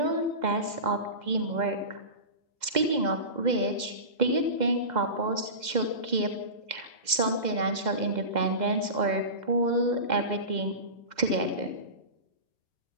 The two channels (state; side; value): late; left; 2.1 ms